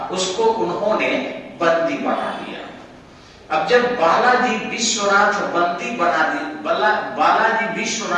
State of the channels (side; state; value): both; identical; correlation 1.00